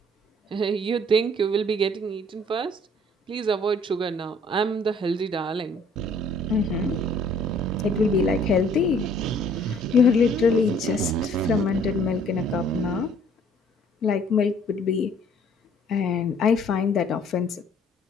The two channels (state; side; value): normal; both; correlation 0.59